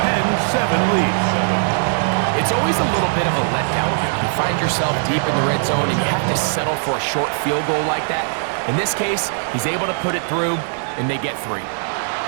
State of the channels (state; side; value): silent; left; digital silence